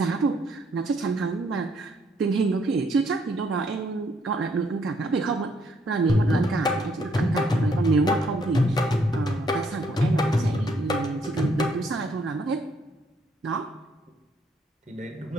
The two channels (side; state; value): both; normal; correlation 0.70